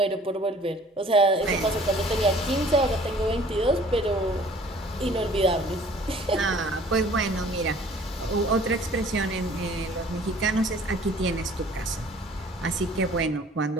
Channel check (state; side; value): normal; both; correlation 0.52